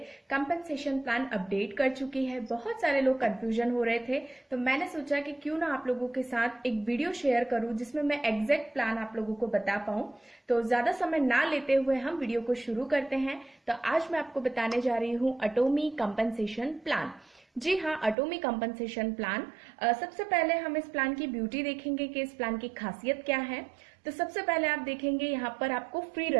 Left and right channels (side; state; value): left; drops out; at 18.2 s